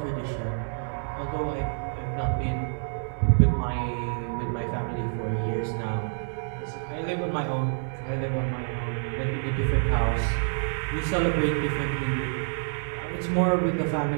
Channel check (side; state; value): left; silent; 60 dB below the other